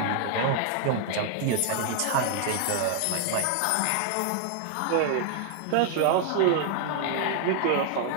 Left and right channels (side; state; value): both; different; correlation 0.00